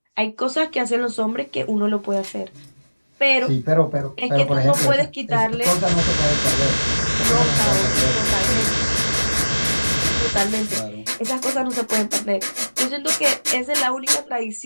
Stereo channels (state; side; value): inverted; both; correlation -1.00